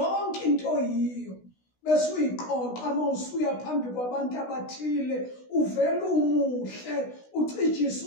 into yiyo bese uyiqoqa uma usuya phambi kwabantu abathile uvela umuhle ucijisa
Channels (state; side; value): late; right; 16 ms